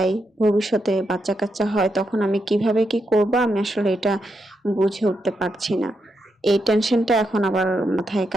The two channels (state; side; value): normal; both; correlation 0.83